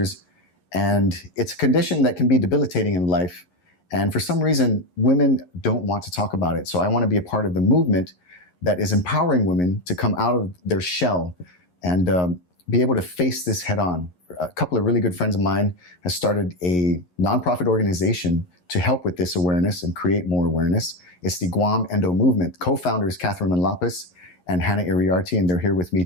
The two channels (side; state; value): right; late; 11 ms